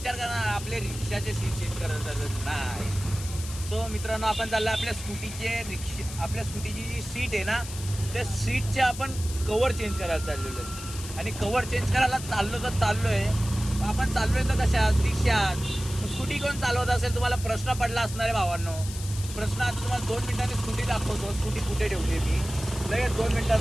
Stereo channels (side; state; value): left; noise; hiss, 12 dB below the sound